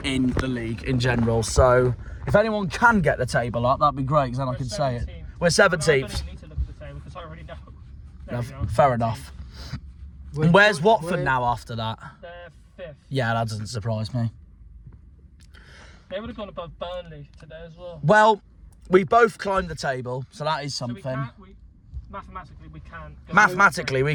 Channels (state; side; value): identical; both; correlation 1.00